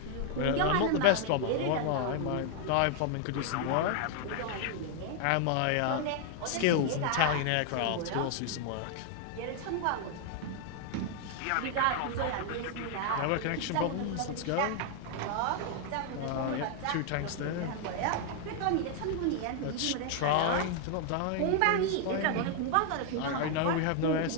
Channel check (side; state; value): both; different; correlation 0.00